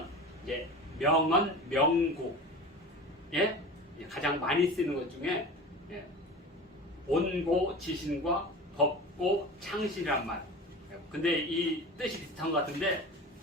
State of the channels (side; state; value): both; normal; correlation 0.34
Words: 이제 명언, 명구, 예? 가장 많이 쓰는 것 중에 예. 온고, 지신과 법고, 창신이란 말. 근데 이 뜻이 비슷한 것 같은데